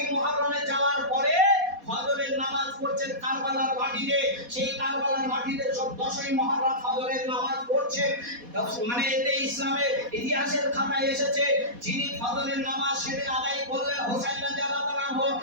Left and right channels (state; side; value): late; left; 4.2 ms